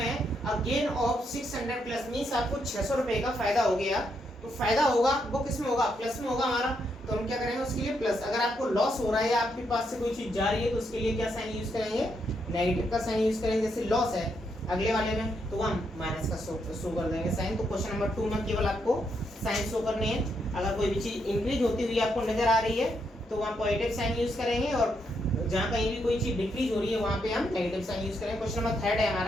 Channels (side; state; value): both; normal; correlation 0.78